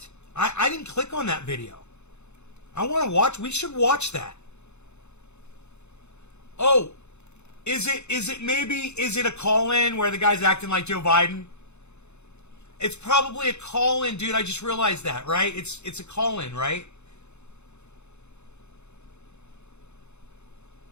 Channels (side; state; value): right; late; 0.81 ms